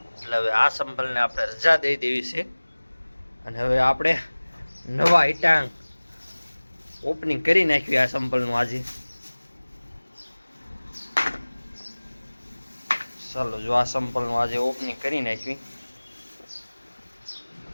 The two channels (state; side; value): inverted; both; correlation -1.00